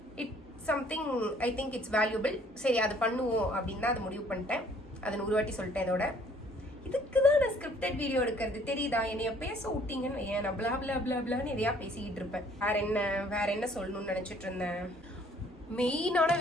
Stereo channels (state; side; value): normal; both; correlation 0.59